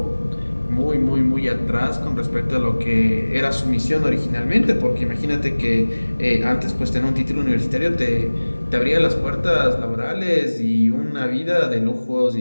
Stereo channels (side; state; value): both; inverted; correlation -1.00